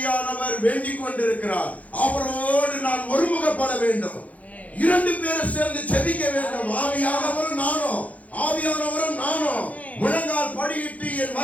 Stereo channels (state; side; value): late; right; 0.070 ms